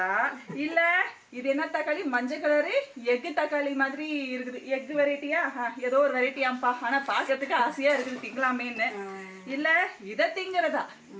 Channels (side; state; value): both; identical; correlation 1.00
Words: இல்ல இது என்ன தக்காளி மஞ்சள் கலரு எக்கு தக்காளி மாதிரி இருக்குது. எக்கு வெரைட்டியா ஏதோ ஒரு வெரைட்டியாம்பா. ஆனா பாக்கிறதுக்கு ஆசையா இருக்குது திங்கலாமேன்னு. இல்ல இத திங்கறதா